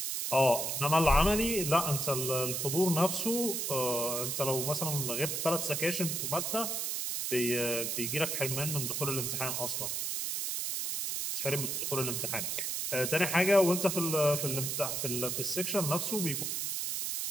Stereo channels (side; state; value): right; noise; hiss, 1 dB below the sound